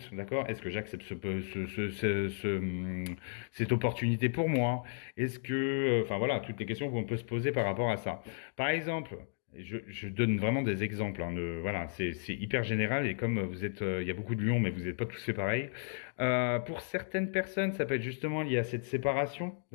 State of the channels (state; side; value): silent; right; digital silence